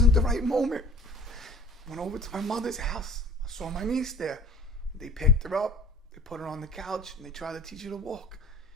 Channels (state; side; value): normal; both; correlation 0.48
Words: the right moment. Went over to my mother's house. I saw my niece there. They picked her up. They put her on the couch and they tried to teach her to walk.